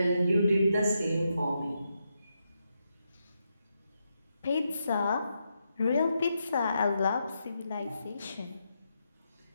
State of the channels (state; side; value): inverted; both; correlation -0.83